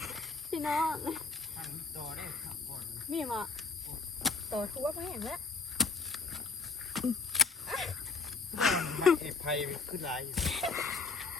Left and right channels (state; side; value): quieter; right; 4.4 dB